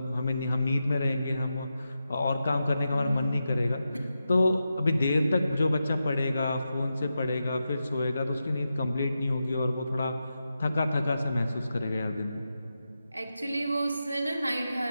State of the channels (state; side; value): inverted; both; correlation -0.89